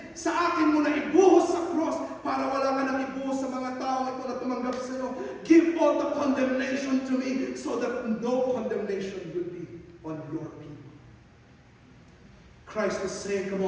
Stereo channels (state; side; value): identical; both; correlation 1.00